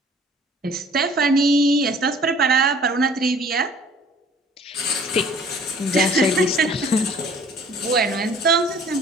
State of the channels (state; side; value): normal; both; correlation 0.53